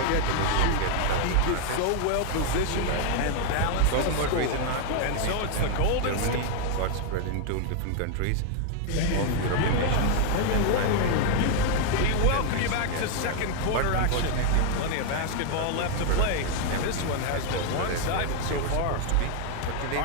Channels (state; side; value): different; both; correlation 0.00